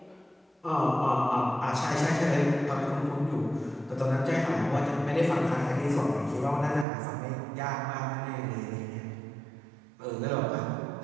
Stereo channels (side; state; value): left; drops out; at 6.9 s